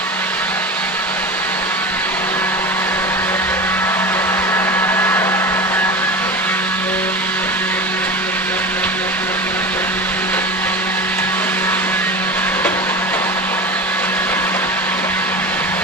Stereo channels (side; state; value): both; normal; correlation 0.29